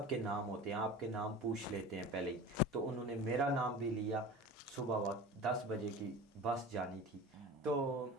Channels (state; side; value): normal; both; correlation 0.35